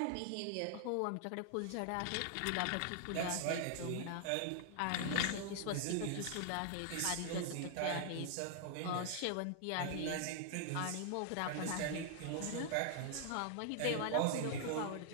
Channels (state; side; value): different; both; correlation 0.00